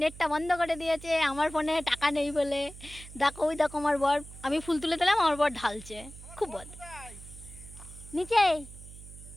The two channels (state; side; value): noise; right; hum, 16 dB below the sound